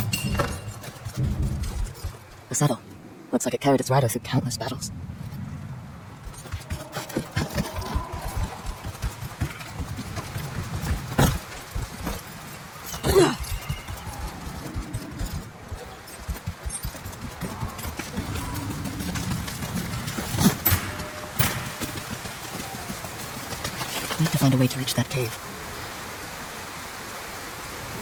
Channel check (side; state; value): both; identical; correlation 1.00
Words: The saddle. Looks like it carried its rider through countless battles. Need to find a way to reach that cave.